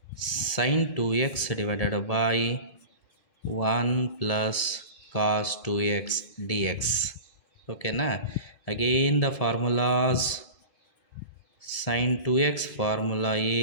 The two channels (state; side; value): late; right; 1.8 ms